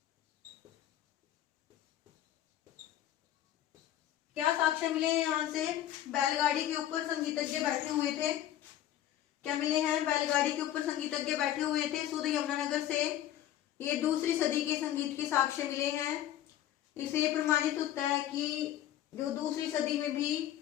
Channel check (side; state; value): right; quieter; 12.3 dB